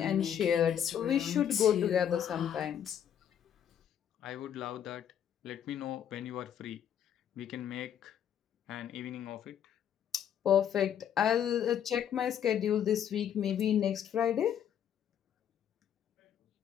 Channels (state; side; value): quieter; right; 9.3 dB